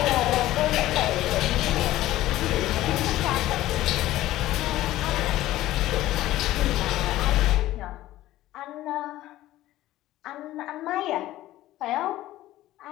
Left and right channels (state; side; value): quieter; right; 15.3 dB